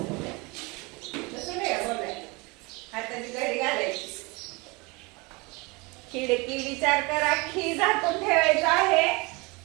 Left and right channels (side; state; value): left; quieter; 26.7 dB